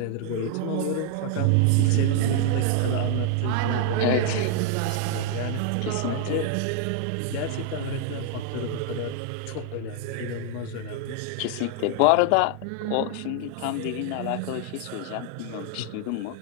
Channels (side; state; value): both; different; correlation 0.00